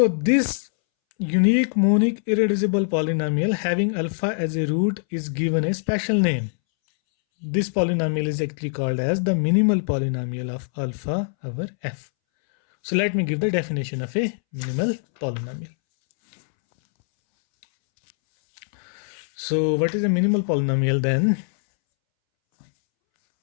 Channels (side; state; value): right; silent; 64 dB below the other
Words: this unique monic irreducible polynomial having alpha as a root is given a special name. This polynomial is actually called as the minimal polynomial of alpha over f. So let me give the definition of a minimal polynomial. So what is a minimal polynomial then?